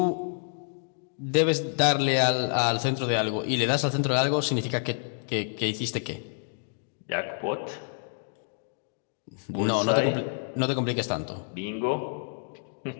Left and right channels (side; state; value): right; silent; digital silence